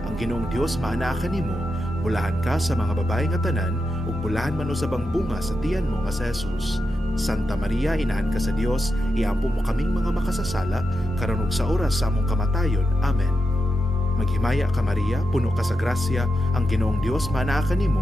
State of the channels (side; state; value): both; normal; correlation 0.87